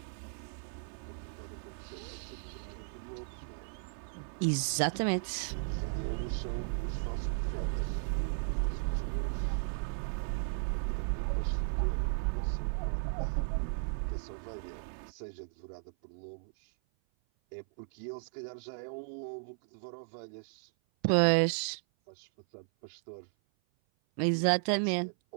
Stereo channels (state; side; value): silent; left; 54 dB below the other